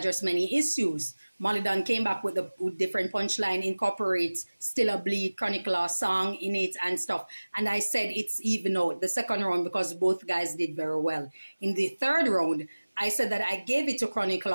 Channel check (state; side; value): inverted; both; correlation -1.00